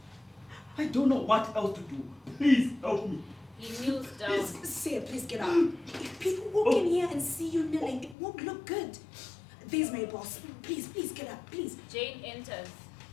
I don't know what else to do. Please help me. He kneels down. Say, please get up. If people walk in here and see you kneeling, it won't look good. There's my boss. Please get up, please. Jane enters.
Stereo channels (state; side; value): drops out; right; at 8.2 s